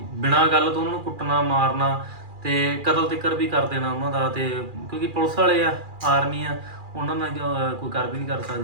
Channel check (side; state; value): left; late; 2.4 ms